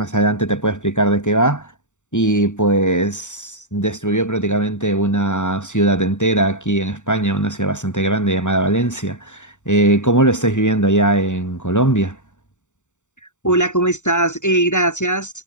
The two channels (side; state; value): right; late; 0.85 ms